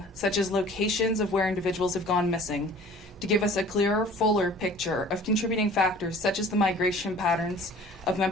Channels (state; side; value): normal; both; correlation 0.47